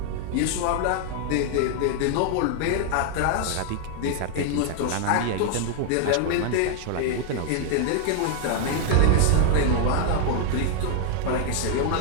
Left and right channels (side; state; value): both; different; correlation 0.00